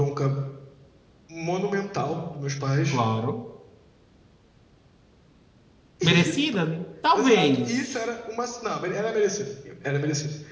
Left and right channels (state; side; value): identical; both; correlation 1.00